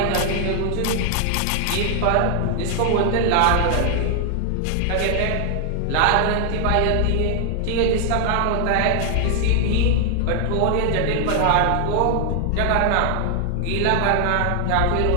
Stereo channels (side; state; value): both; different; correlation 0.00